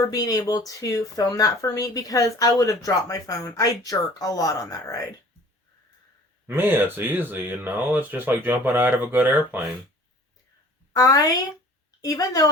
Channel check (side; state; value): both; normal; correlation 0.48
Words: being able to film that for me, because I would have dropped my phone. I jerk a lot on that ride. Me, it's easy, It's just like jumping out of a good airplane. Even though